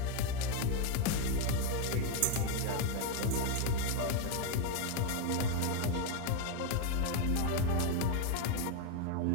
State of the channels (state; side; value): different; both; correlation 0.02